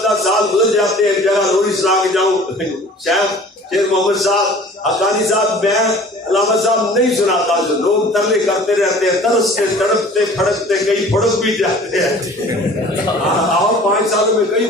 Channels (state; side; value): normal; both; correlation 0.47